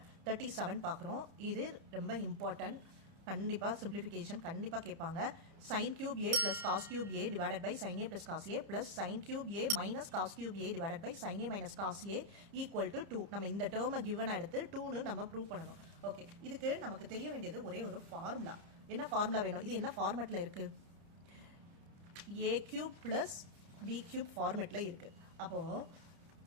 37 பார்க்குறோம். இது ரொம்ப இம்பார்ட்டன்ட். கண்டிப்பாக சிம்பிளிஃபிகேஷன் கண்டிப்பாக கேட்பாங்க. Sine cube A plus cos cube A divided by sine A plus cos A plus sine cube A minus cos cube A divided by sine A minus cos A equal to 2. நம்ம இந்த டேர்மை கிவனா எடுத்து 2ன்னு நம்ம ப்ரூவ் பண்ணணும். ஓகே, இதுக்கு நமக்கு தெரிய வேண்டியது ஒரே ஒரு ஃபார்முலா. என்ன ஃபார்முலா வேணும்? இது என்ன ஃபார்மேட்டில் இருக்கு? A cube plus B cube ஃபார்மேட்டில் இருக்குது. அப்போது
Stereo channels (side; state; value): left; late; 30 ms